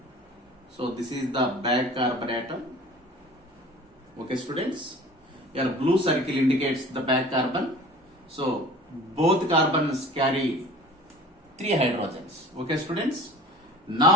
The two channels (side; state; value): both; normal; correlation 0.43